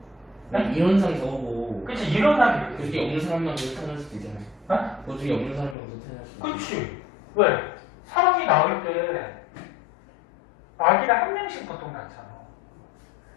이론상 저거고. 그치, 이론상 그게 없는 사람만 태어날 수도 있잖아요. 어? 보증이 없는 사람만 태어날 수도 있잖아요. 그치. 왜? 사람이 나올 때 아기를 한 명씩 보통 낳잖아.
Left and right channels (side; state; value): right; drops out; at 5.8 s